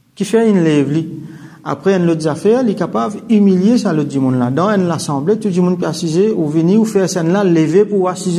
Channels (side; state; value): both; identical; correlation 1.00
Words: qui fait une lève li après un autre affaire il est capable humilier ça le dit mon là dans une assemblée tout le monde peut assiser ou venir ou faire ça là lever pour